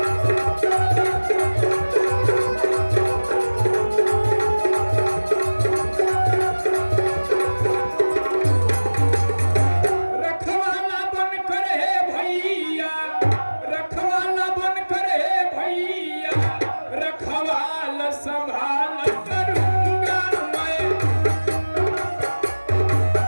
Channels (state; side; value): inverted; both; correlation -1.00